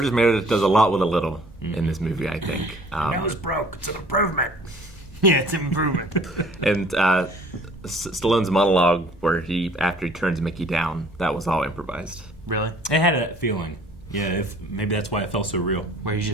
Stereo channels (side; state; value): both; normal; correlation 0.53